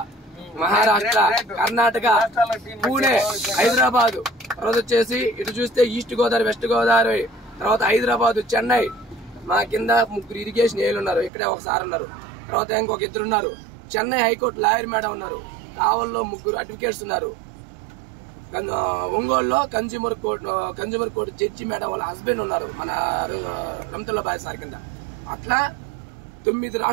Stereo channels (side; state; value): left; drops out; at 11.3 s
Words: మహారాష్ట్ర, కర్ణాటక, పూణే, హైదరాబాద్, తర్వాత వచ్చేసి ఇటు చూస్తే ఈస్ట్ గోదావరి, వెస్ట్ గోదావరి, తర్వాత హైదరాబాద్, చెన్నై. మా కింద 3 ఇరిగేషన్ ఏలు ఉన్నారు. ఇక్కడే ఒకసారి ఉన్నారు. తర్వాత ఇంకొక 2 ఉన్నారు. చెన్నై హైకోర్టు లాయర్ మేడం ఉన్నారు. కావల్లో 3 అడ్వకేట్స్ ఉన్నారు. ఒంగోలులో కన్జ్యూమర్ కోర్టు జడ్జి మేడం వాళ్ళ హస్బెండ్ ఉన్నారు, మన రమతుల్లా బాయ్ సార్ కింద. అట్లా 9